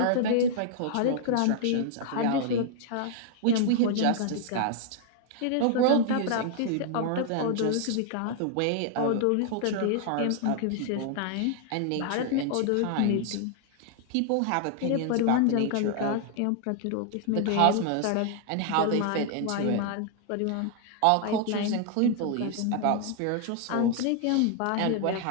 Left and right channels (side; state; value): both; different; correlation 0.00